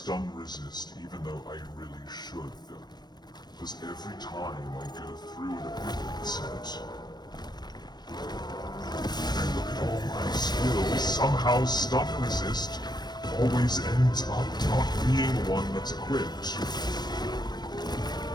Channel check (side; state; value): right; late; 0.20 ms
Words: resist, even though I really should. Because every time I go through an ability set, and I look at all my skills, somehow stun resist always ends up not being one that's equipped.